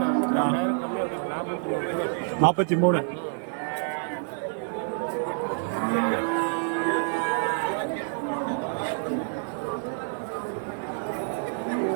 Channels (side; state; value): left; silent; digital silence